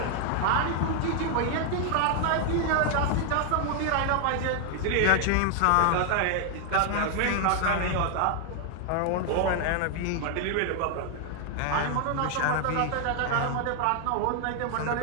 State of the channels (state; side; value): different; both; correlation 0.00